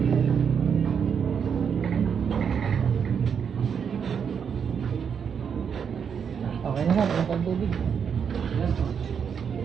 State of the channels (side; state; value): left; quieter; 7.1 dB